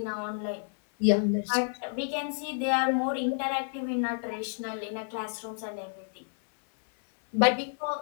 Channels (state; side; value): silent; right; 58 dB below the other